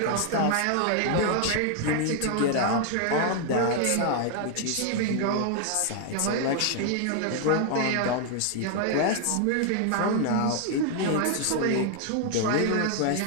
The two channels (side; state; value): both; different; correlation 0.00